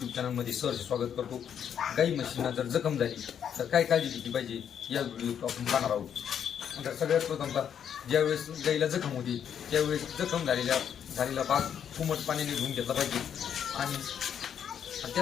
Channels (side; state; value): right; quieter; 8.6 dB